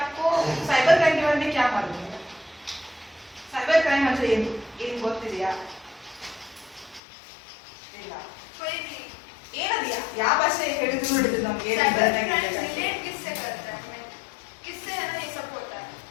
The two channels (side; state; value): right; drops out; at 7.0 s